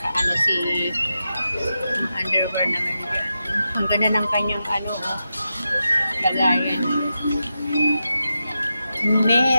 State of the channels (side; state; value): both; inverted; correlation -0.89